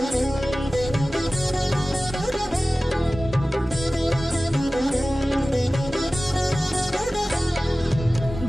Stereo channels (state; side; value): normal; both; correlation 0.97